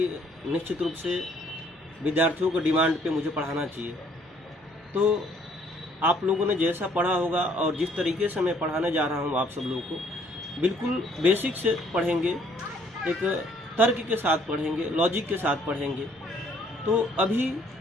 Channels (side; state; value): both; normal; correlation 0.63